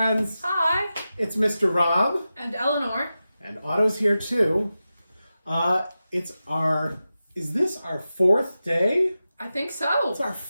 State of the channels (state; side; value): inverted; both; correlation -0.93